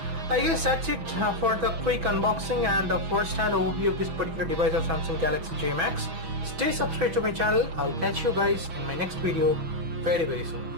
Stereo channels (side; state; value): left; late; 6.2 ms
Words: I guess that's it for the quick unboxing and the first-hand overview of this particular device of Samsung Galaxy J Max. Stay subscribed to my channel. I'll catch you guys in my next video very